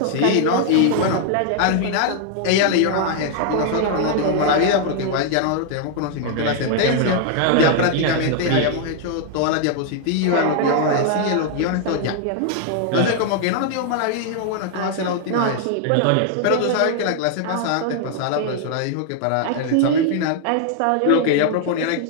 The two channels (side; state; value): both; different; correlation 0.00